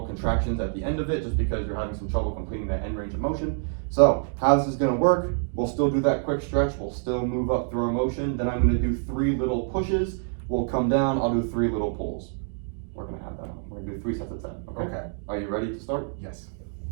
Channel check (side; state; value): left; silent; 61 dB below the other